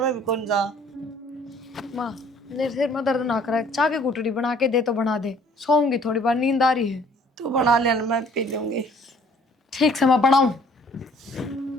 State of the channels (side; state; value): both; normal; correlation 0.57